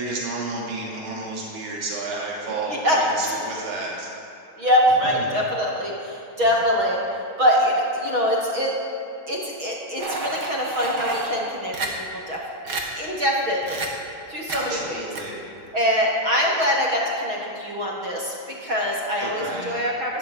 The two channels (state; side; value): late; left; 6.3 ms